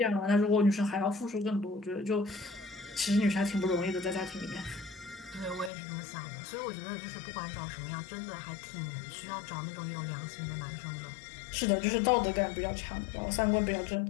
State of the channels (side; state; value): right; drops out; at 5.7 s